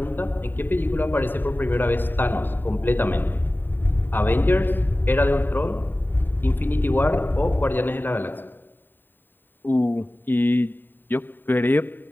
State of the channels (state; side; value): late; right; 0.093 ms